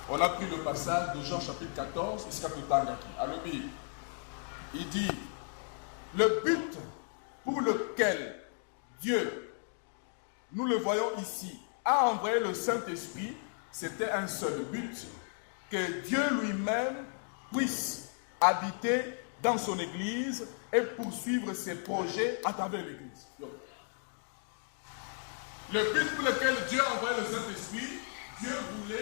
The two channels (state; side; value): silent; right; 55 dB below the other